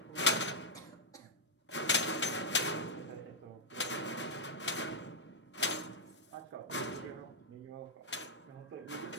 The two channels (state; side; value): normal; both; correlation -0.06